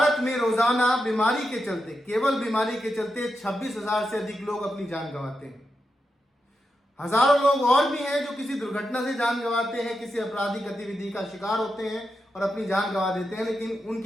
में रोजाना बीमारी के चलते, केवल बीमारी के चलते 26,000 से अधिक लोग अपनी जान गंवाते हैं। हजारों लोग और भी हैं जो किसी दुर्घटना से जान गंवाते हैं, किसी आपराधिक गतिविधि का शिकार होते हैं और अपनी जान गंवा देते हैं, लेकिन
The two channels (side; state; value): both; normal; correlation 0.87